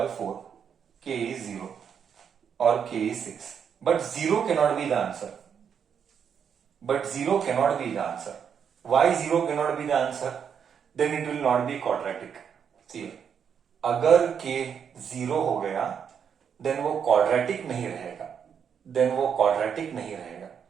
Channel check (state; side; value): quieter; left; 7.5 dB